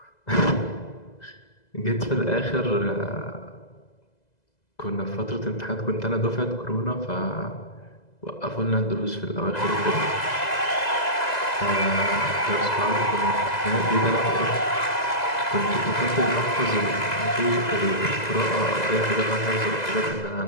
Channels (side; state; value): right; late; 2.0 ms